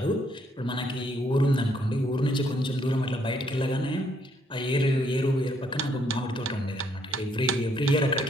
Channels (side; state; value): both; normal; correlation 0.70